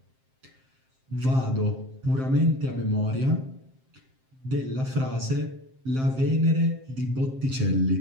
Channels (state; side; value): late; left; 7.6 ms